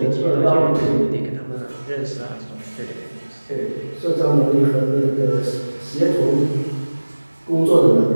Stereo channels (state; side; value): inverted; both; correlation -1.00